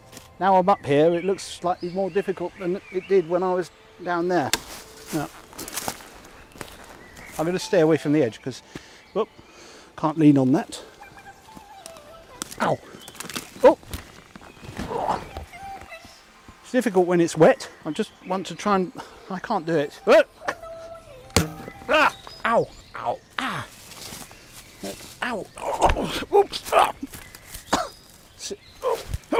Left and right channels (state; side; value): identical; both; correlation 1.00